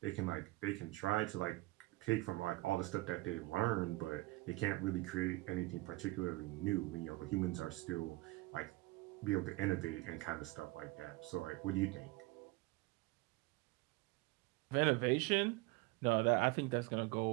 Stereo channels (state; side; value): quieter; left; 21.2 dB